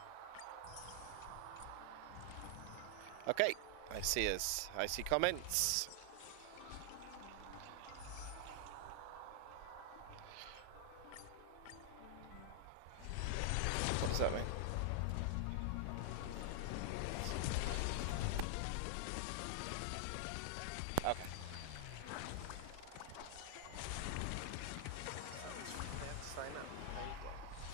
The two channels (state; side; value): different; both; correlation 0.00